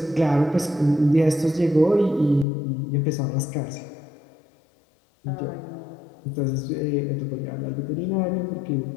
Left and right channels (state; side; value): drops out; right; at 2.5 s